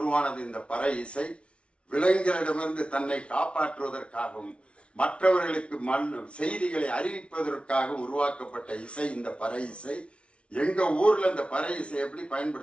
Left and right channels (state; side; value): late; right; 0.060 ms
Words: இந்த பறை இசை. விலங்குகளிடமிருந்து தன்னை காப்பாற்றுவதற்காகவும் மற்றவர்களுக்கு செய்திகளை அறிவிப்பதற்காக உருவாக்கப்பட்ட இசை இந்த பறை இசை. எங்க ஊர்ல இந்த பறை இசை எப்படி